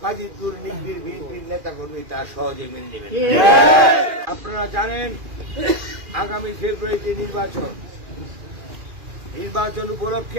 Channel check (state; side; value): late; left; 2.4 ms